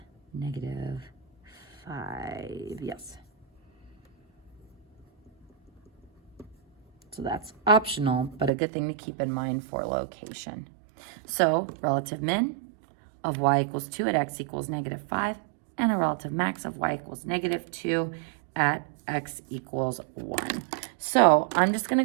-5, yes. So that's optional, but a good thing to keep in mind for location. So relative min of y equals 2 at x equals -5, and a relative max of y equals -2 at x equals 1. So I'm just gonna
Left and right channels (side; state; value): left; drops out; at 8.5 s